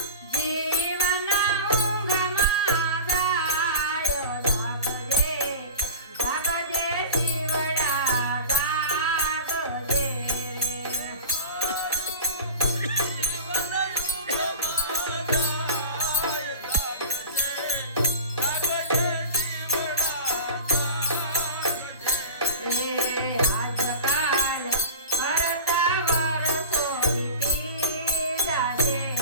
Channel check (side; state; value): both; inverted; correlation -0.34